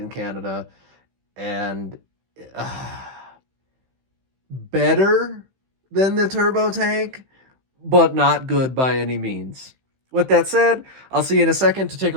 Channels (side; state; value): left; late; 15 ms